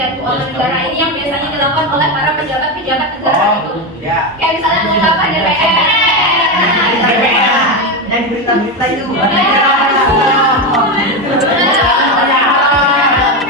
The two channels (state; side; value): normal; both; correlation 0.13